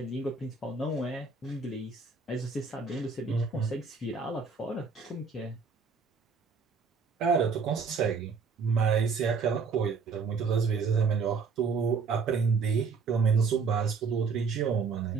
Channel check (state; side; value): quieter; left; 5.0 dB